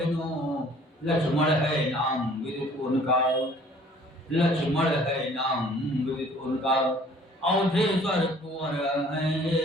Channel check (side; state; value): both; normal; correlation 0.54